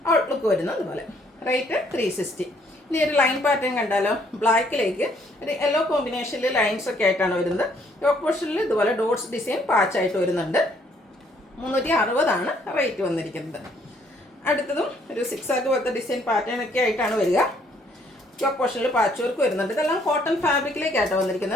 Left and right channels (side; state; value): both; normal; correlation 0.66